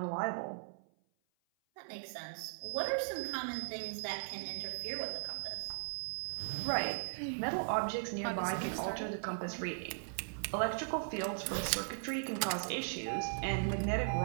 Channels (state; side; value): silent; left; 52 dB below the other